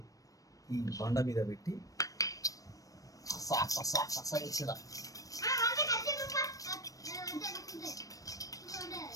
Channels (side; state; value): right; late; 0.16 ms